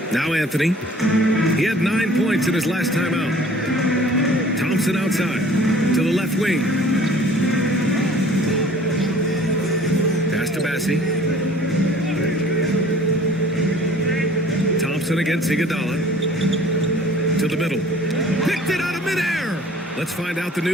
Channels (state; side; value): normal; both; correlation 0.51